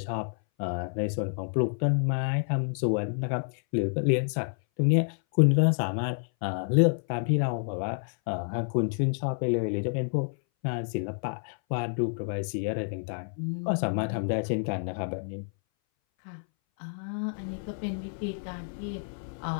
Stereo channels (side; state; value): right; silent; 59 dB below the other